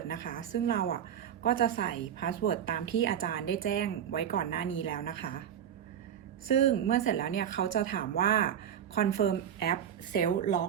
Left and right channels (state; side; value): quieter; left; 9.3 dB